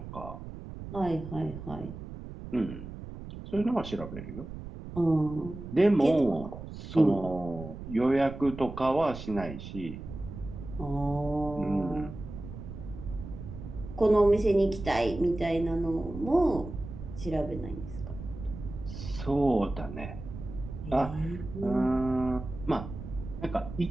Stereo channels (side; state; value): right; noise; rumble, 11 dB below the sound